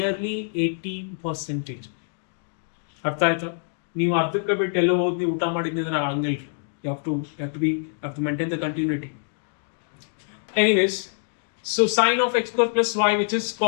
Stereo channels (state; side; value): silent; right; digital silence